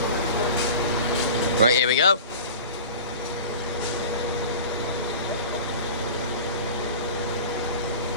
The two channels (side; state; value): both; inverted; correlation -0.38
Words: Right, here we go.